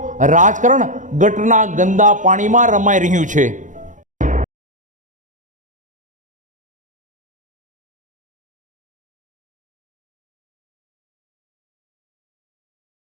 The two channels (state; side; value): late; left; 0.37 ms